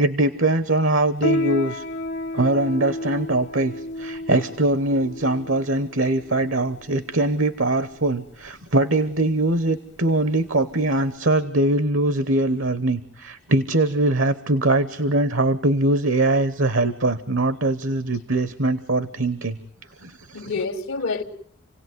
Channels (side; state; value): both; normal; correlation 0.13